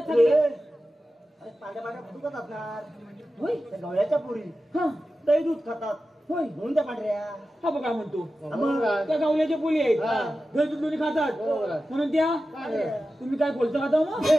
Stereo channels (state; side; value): normal; both; correlation 0.93